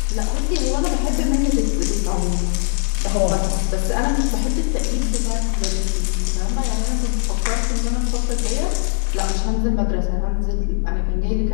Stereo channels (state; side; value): silent; right; digital silence